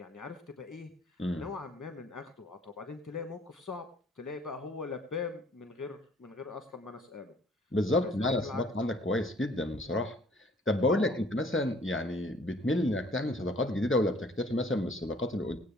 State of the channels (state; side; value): normal; both; correlation 0.58